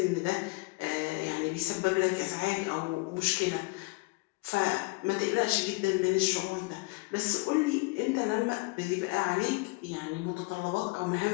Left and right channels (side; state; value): right; quieter; 25.2 dB